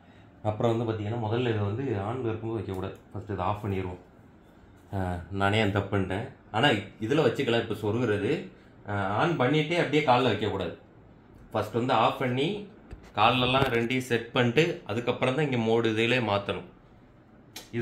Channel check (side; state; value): both; identical; correlation 1.00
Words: அப்புறம் வந்து பார்த்தீங்கன்னா முதல்ல இதை வந்து ஆன் இருக்கும்போது வைக்கக்கூடாது. ஃபஸ்ட்டு இதை ஆஃப் பண்ணிடுவோம். நானே அந்த தப்பு பண்ணிட்டேன். ஆனால் இதில் வச்சுக்கலாம். இப்போ சொருகிறது ஆன் பண்ணிவிட்டே அப்படியே காலில் வைக்கக்கூடாது. ஃபஸ்ட் வந்து ஆஃப் பண்ணி காலெல்லாம் 2 செட் பண்ணிட்டு அதுக்கப்புறம் தான் இங்கே மோடு இதிலே மாற்றணும்.